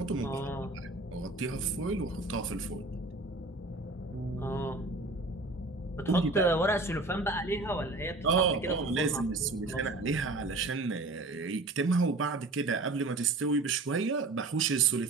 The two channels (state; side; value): quieter; left; 3.1 dB